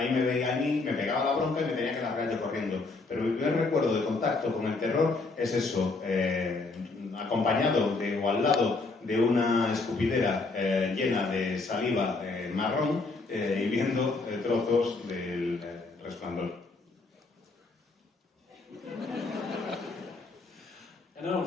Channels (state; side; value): quieter; right; 3.7 dB